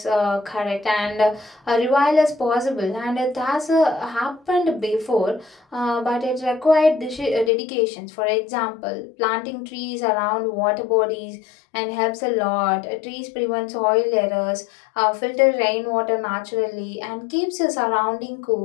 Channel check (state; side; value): drops out; right; at 7.5 s